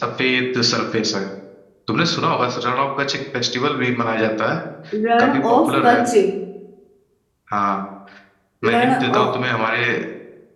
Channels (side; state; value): both; identical; correlation 1.00